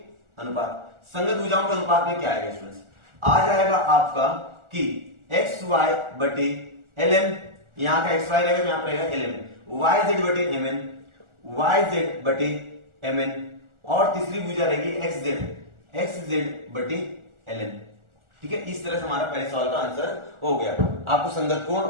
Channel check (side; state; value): left; late; 1.4 ms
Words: अनुपात। संगत भुजाओं के अनुपात में क्या आएगा स्टूडेंट्स, आ जाएगा आपका कि XY बटे LM, यहां का XY रहेगा तो यहां पर रहेगा LM, YZ बटे MN, YZ बटे MN और तीसरी भुजा रहेगी XZ बटे LN, ठीक है। इस तरह से हमारा पहले सवाल का आंसर हो गया। आपको संगत कोण